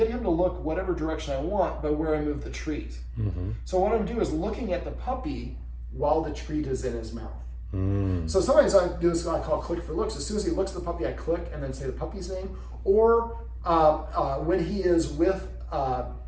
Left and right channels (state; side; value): identical; both; correlation 1.00